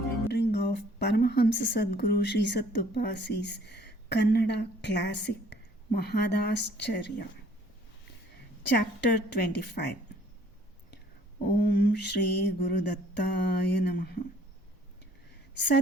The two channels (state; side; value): normal; both; correlation 0.58